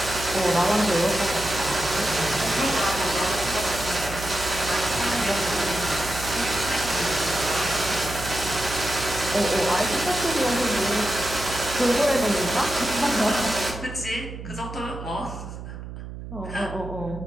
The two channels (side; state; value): right; noise; hum, 10 dB below the sound